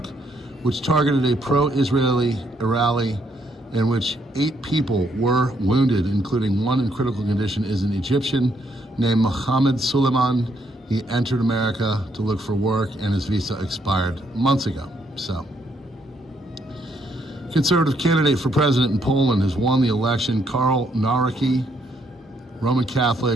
which targeted a pro-Israeli rally in which 8 people were wounded, including one in critical condition, is an Egyptian named Mohammed Suleiman. He entered America to look for work, and his visa expired months ago. So, conservative candidate for president in Poland has won the election. Karl Nawrocki, Roman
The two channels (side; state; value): both; normal; correlation 0.73